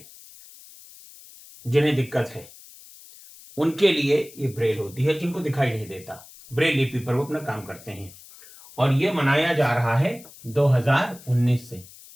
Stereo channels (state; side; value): noise; left; hiss, 20 dB below the sound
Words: जिन्हें दिक्कत है उनके लिए ये ब्रेल होती है, जिनको दिखाई नहीं देता, ब्रेल लिपि पर वो अपना काम करते हैं और ये मनाया जा रहा है 2019 से।